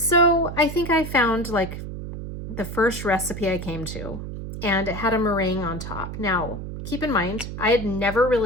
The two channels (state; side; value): noise; right; hum, 8 dB below the sound